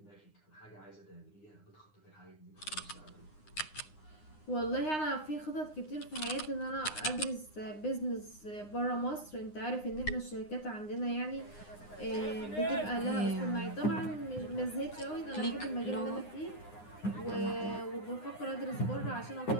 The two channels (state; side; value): late; right; 9.7 ms